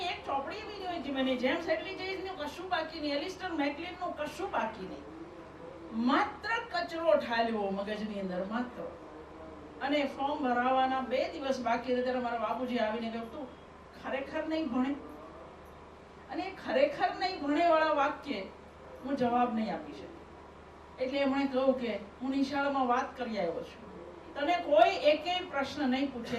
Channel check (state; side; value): identical; both; correlation 1.00